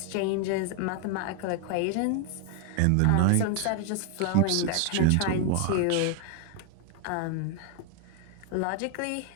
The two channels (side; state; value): both; different; correlation 0.00